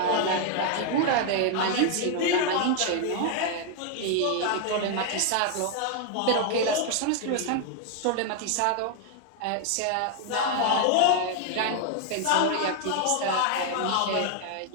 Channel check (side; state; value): both; different; correlation 0.00